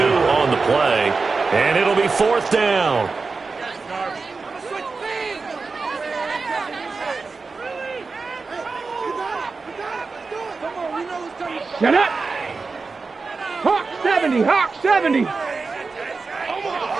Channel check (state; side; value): quieter; left; 4.3 dB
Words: on the play. And it'll be 4th down. Shut up. Hawk 70, Hawk 70.